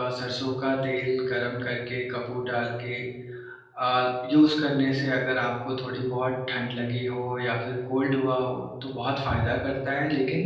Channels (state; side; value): identical; both; correlation 1.00